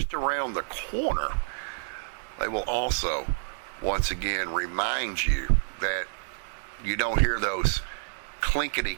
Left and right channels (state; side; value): silent; left; 59 dB below the other